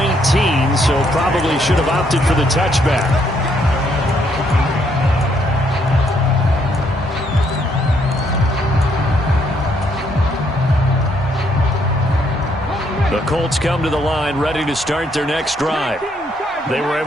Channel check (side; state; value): both; normal; correlation 0.71